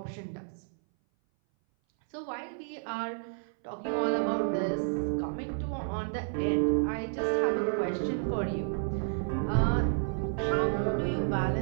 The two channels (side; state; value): left; silent; 57 dB below the other